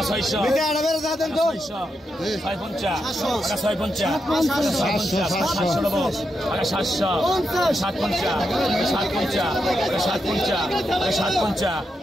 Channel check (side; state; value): both; normal; correlation 0.84